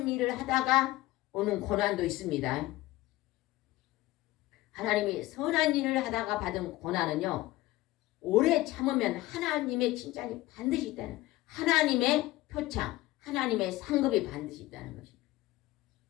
일을 하다가 오는 고난도 있습니다. 하나님이 선한 일을 하다가 받은 고난은요. 오래 참으면 하나님의 칭찬이 반드시 있다는 하나님의 표창, 하나님의 상급이 반드시 있다는 것입니다.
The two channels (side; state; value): right; quieter; 17.9 dB